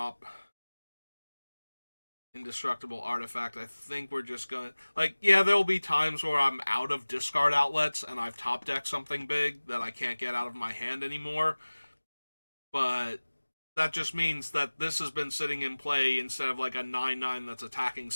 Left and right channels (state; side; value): inverted; both; correlation -1.00